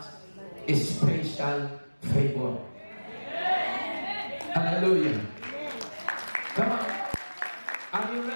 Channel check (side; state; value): both; inverted; correlation -1.00